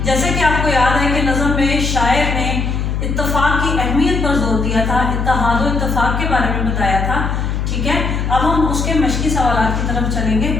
جیسے کہ آپ کو یاد ہے کہ نظم میں شاعر نے اتفاق کی اہمیت پر زور دیا تھا، اتحاد و اتفاق کے بارے میں بتایا تھا، ٹھیک ہے۔ اب ہم اس کے مشقی سوالات کی طرف چلیں گے۔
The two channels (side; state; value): left; noise; hum, 1 dB below the sound